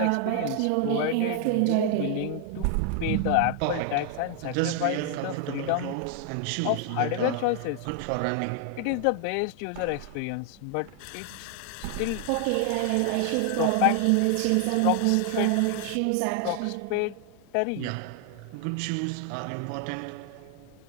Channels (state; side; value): different; both; correlation 0.00